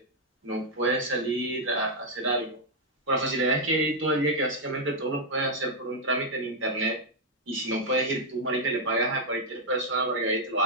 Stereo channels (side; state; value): both; normal; correlation -0.03